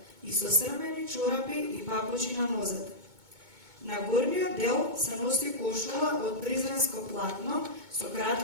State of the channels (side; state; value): left; late; 2.2 ms